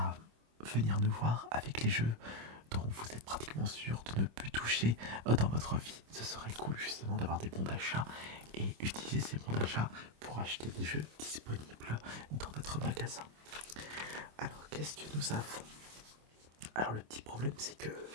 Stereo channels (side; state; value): left; late; 26 ms